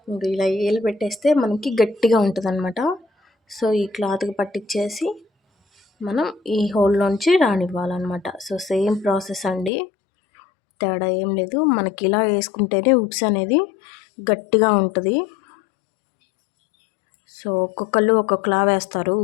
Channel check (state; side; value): drops out; right; at 9.7 s